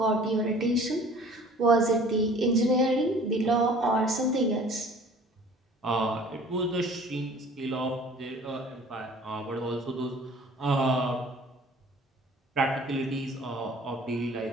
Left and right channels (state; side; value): normal; both; correlation 0.49